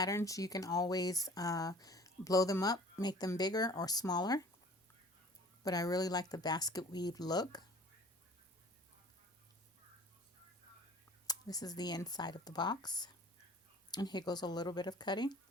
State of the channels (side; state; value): both; normal; correlation 0.48